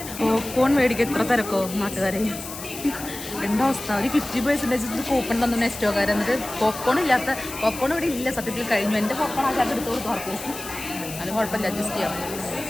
പോപ്കോൺ മേടിക്കുക എത്ര തിരക്കോ നാട്ടുകാരെ. എന്താ അവസ്ഥ? ഒരു 50% കൂപ്പൺ തന്നു നെസ്റ്റോക്കാർ. എന്നിട്ട് പോപ്കോൺ ഇവിടെ ഇല്ല. സത്യത്തിൽ കഴിഞ്ഞു. എൻ്റെ പോപ്കോൺ ആ ചാക്ക് എടുത്ത് കൊടുത്തു ആർക്കും. അത് കുഴപ്പമില്ല, അഡ്ജസ്റ്റ് ചെയ്യാം.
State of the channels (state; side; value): noise; left; hiss, 11 dB below the sound